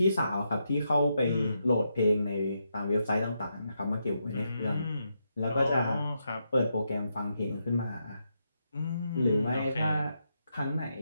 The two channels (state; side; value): inverted; both; correlation -0.82